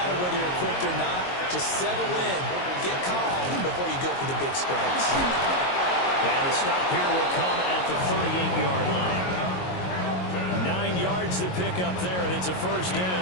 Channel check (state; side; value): late; right; 22 ms